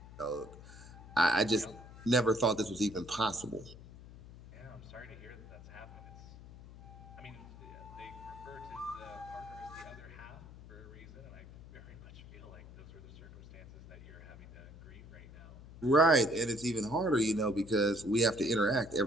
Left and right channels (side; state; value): left; noise; hum, 17 dB below the sound